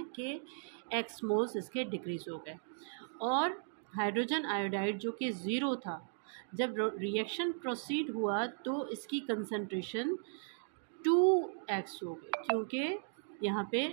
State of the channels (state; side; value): silent; left; digital silence